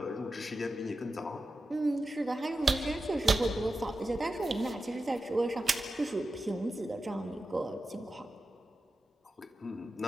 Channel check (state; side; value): normal; both; correlation 0.92